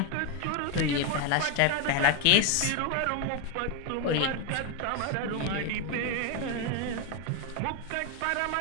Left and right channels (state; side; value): different; both; correlation 0.01